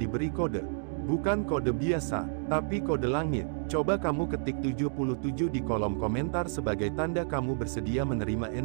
kode. Bukan kode biasa, tapi kode langit. Coba kamu ketik 77 di kolom komentar sebagai tanda kamu bersedia menerima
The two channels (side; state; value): left; silent; digital silence